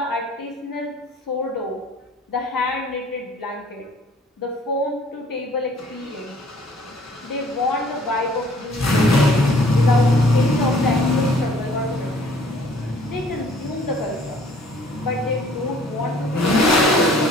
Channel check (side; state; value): both; normal; correlation 0.56